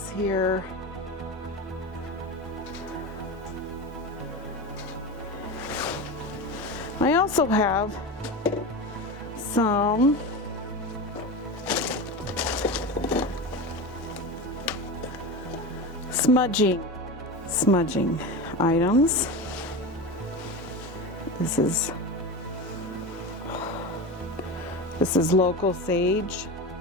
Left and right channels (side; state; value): both; normal; correlation 0.24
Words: here. I also have some Smudging items. This is local sage.